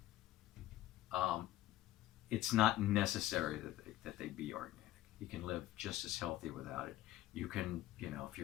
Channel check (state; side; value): quieter; right; 15.0 dB